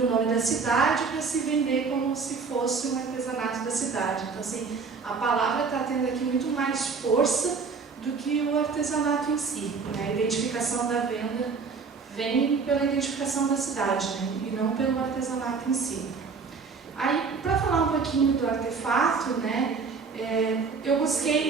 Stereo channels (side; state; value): left; quieter; 5.0 dB